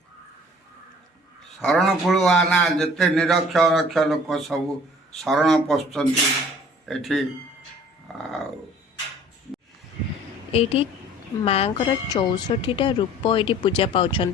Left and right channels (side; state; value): both; normal; correlation 0.51